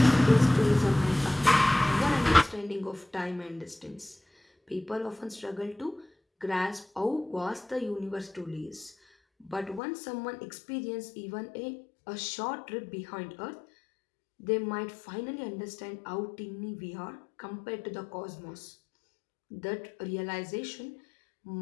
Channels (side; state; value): right; drops out; at 9.8 s